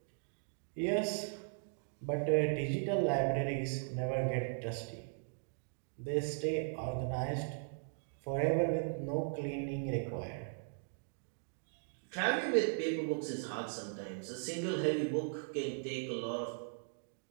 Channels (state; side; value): silent; left; digital silence